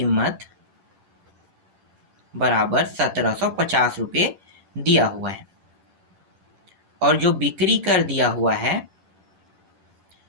बराबर 1750 रुपये दिया हुआ है, और जो बिक्री कर दिया हुआ है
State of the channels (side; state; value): left; late; 10 ms